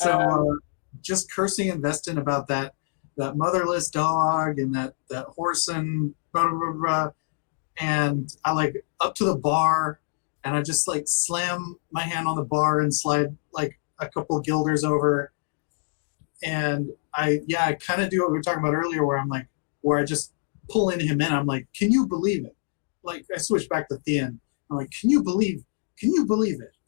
just cursing Investin about that motherless dog and that horse and blah, blah, blah, blah. And I like up to the bar and I just like slam my hand on the bar and slide like a couple guilders over. And I kind of do what we were talking about earlier where I just pull in him in. I'm like, can you believe it? Like I switch back to Thean. I'm like, can you believe it?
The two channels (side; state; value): right; silent; digital silence